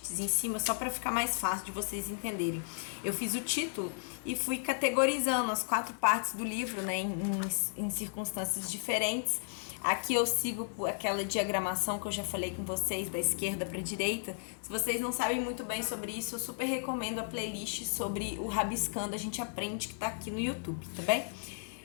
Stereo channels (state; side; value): silent; right; digital silence